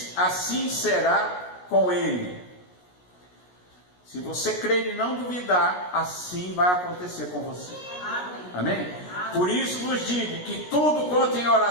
assim será com ele. Se você crer e não duvidar, assim vai acontecer com você. Amém? Por isso vos digo que tudo quanto em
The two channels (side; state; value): right; late; 17 ms